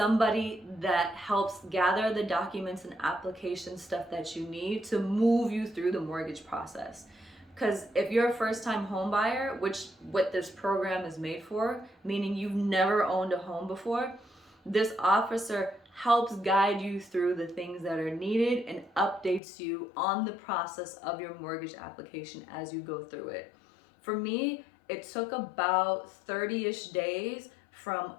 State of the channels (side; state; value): right; drops out; at 19.4 s